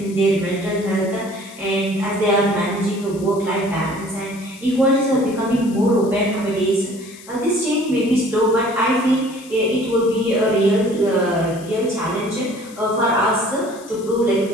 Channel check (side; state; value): left; noise; hiss, 20 dB below the sound